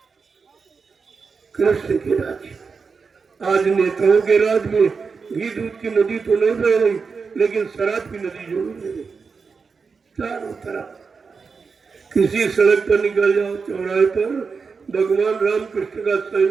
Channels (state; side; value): quieter; left; 5.1 dB